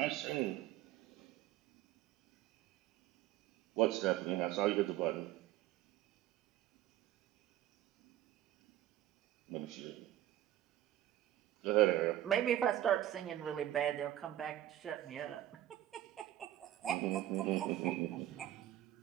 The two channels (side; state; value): left; quieter; 13.3 dB